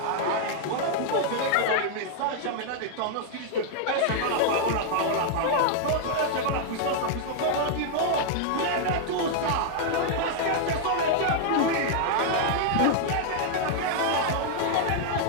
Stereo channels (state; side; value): different; both; correlation -0.01